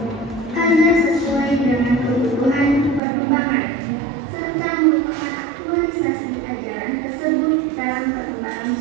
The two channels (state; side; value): drops out; left; at 3.0 s